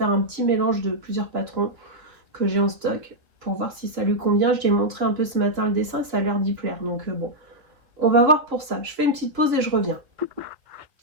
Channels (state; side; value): late; left; 3.1 ms